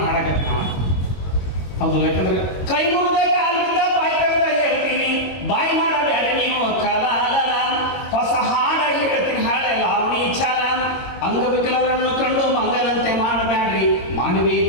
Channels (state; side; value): late; right; 22 ms